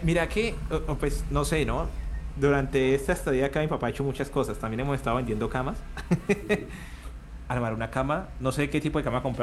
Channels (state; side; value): identical; both; correlation 1.00